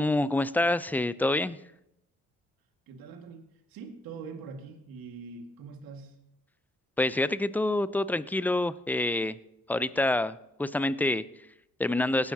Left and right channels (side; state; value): both; normal; correlation 0.78